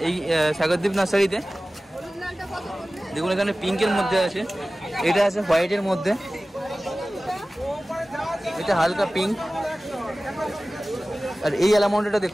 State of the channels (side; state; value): both; normal; correlation 0.97